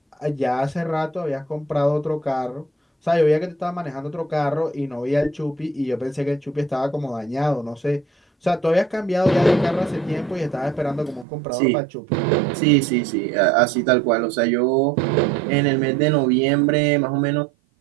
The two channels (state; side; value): drops out; left; at 11.2 s